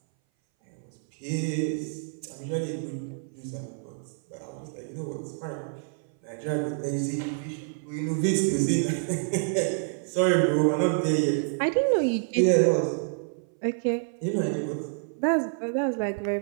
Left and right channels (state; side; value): silent; left; 59 dB below the other